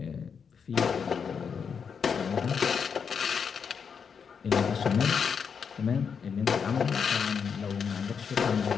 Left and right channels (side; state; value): right; quieter; 6.5 dB